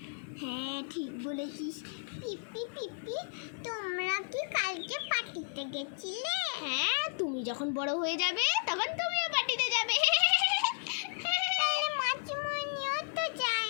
হ্যাঁ ঠিক বলেছিস। পিপি পিপি, তোমরা কি কালকে পার্টিতে গেছিলে? হ্যাঁ, তুমি যখন বড় হয়ে যাবে তখন তুমিও পার্টিতে যাবে। মাসিমণিও তো যায়?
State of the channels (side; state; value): right; silent; digital silence